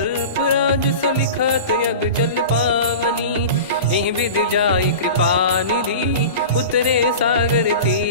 राज सलिखत यग जल पावनी। एहि विधि जाई कृपा निधि उतरे सागर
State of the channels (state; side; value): inverted; both; correlation -0.33